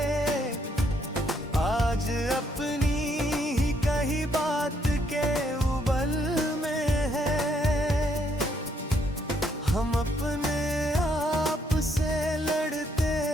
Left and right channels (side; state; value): both; normal; correlation 0.71